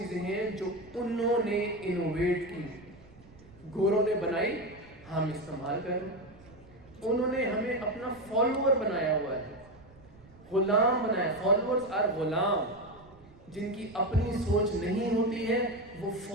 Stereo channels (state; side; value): noise; right; rumble, 23 dB below the sound